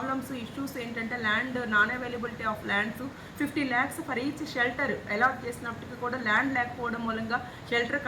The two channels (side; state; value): both; identical; correlation 1.00